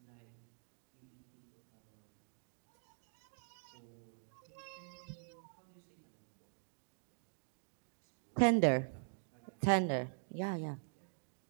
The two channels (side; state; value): left; silent; digital silence